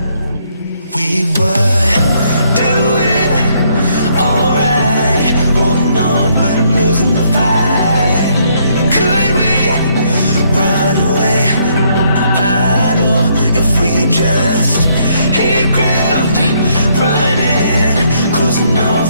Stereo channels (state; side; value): inverted; both; correlation -0.70